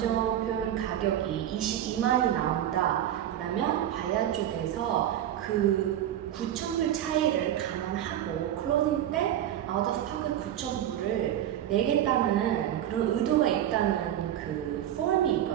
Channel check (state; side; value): quieter; left; 11.5 dB